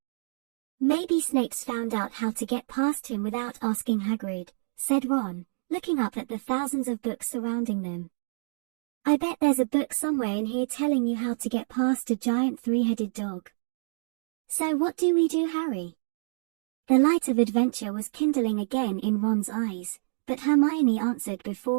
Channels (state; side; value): silent; left; digital silence